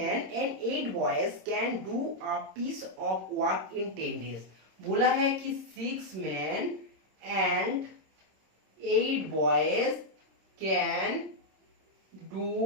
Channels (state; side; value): late; left; 26 ms